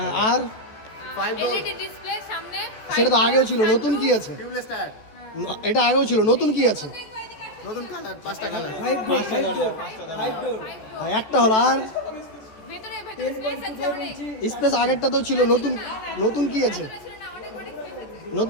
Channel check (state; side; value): late; right; 14 ms